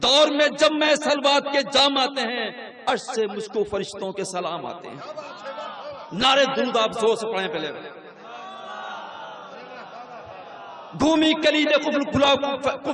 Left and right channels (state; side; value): identical; both; correlation 1.00